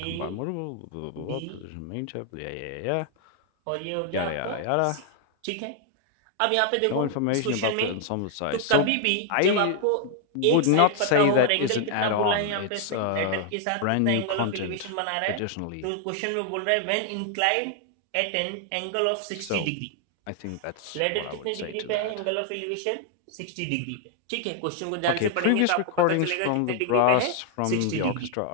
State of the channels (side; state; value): both; different; correlation 0.00